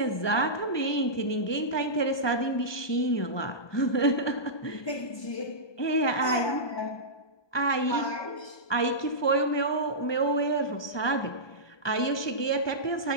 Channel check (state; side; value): late; right; 1.2 ms